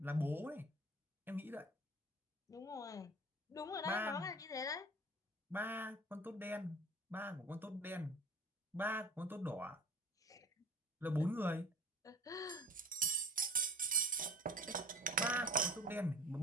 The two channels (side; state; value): both; normal; correlation 0.42